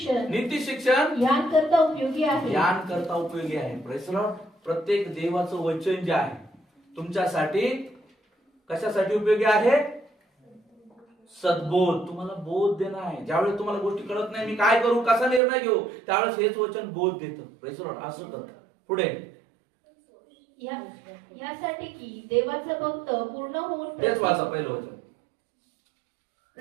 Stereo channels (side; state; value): left; drops out; at 15.4 s